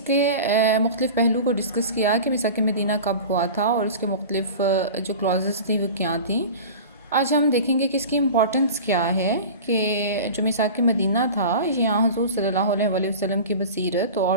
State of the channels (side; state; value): both; inverted; correlation -0.35